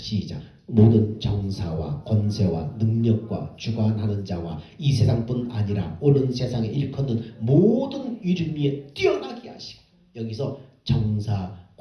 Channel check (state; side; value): identical; both; correlation 1.00